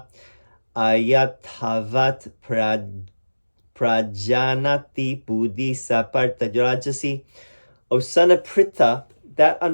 ayathavat prajanati buddhi saparta rajasi. O son of Pritha, that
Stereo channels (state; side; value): inverted; both; correlation -1.00